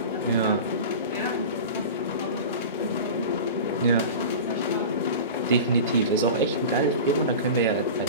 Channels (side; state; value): both; inverted; correlation -0.32